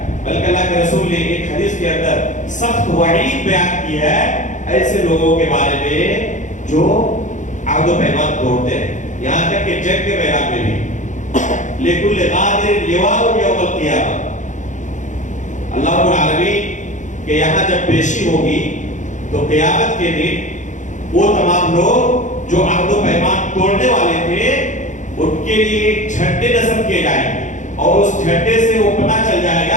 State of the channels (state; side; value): late; right; 0.36 ms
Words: بلکہ اللہ کے رسول نے ایک حدیث کے اندر سخت وعید بیان کی ہے ایسے لوگوں کے بارے میں جو عہد و پیمان توڑتے ہیں. یہاں تک کہ جنگ کے میدان میں بھی لِكُلِّ غَادِرٍ لِوَاءٌ يَوْمَ الْقِيَامَةِ، اللہ رب العالمین کہ یہاں جب پیشی ہوگی تو قیامت کے دن وہ تمام لوگ جو عہد و پیمان توڑنے والے تھے ان کے لیے ایک جھنڈے نصب کیے جائیں گے اور اس جھنڈے سے وہ پتہ چل جائے